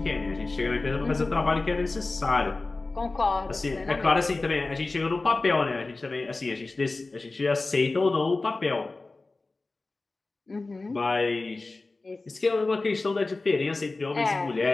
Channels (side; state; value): right; quieter; 3.4 dB